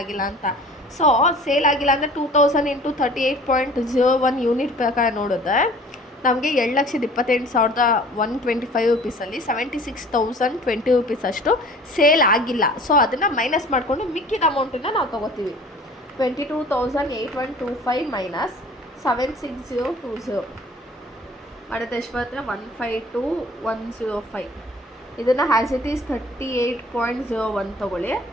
ಆಗಿಲ್ಲ ಅಂತ. ಸೊ ಸೇಲ್ ಆಗಿಲ್ಲ ಅಂದರೆ 2000 ಇಂಟು 38.01 ಯೂನಿಟ್ ಪ್ರಕಾರ ನೋಡಿದ್ರೆ ನಮಗೆ 7,28,125 ರುಪೀಸಲ್ಲಿ 76,020 ರುಪೀಸ್ ಅಷ್ಟು ಸೇಲ್ ಆಗಿಲ್ಲ. ಸೊ ಅದನ್ನು ಮೈನಸ್ ಮಾಡಿಕೊಂಡು ಮಿಕ್ಕಿದ ಅಮೌಂಟನ್ನು ನಾವು ತೊಗೋತೀವಿ. 22,825 ಮೈನಸ್ 76,020 ಮಾಡಿದ್ರೆ ಎಷ್ಟು ಬರುತ್ತೆ? 152,105. ಇದನ್ನು ಹ್ಯಾಸ್ ಇಟ್ ಈಸ್ 38.01 ತೊಗೊಳ್ಳಿ.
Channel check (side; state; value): both; normal; correlation 0.48